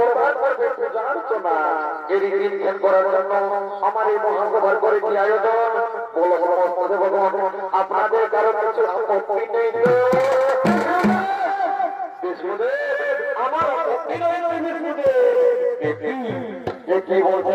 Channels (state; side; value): identical; both; correlation 1.00